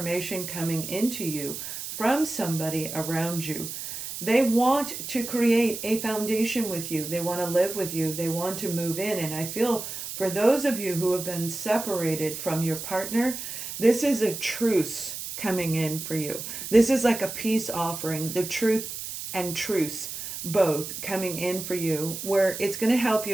coming into you from somebody around you. They want to create a foundation with you. They want to live with you. They want to move in. And I feel for those of you who have been separated from your partner, this is a truce coming in for you. This is like a peace offering, the truth and truce both coming in for you, where it's going to help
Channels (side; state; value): right; noise; hiss, 7 dB below the sound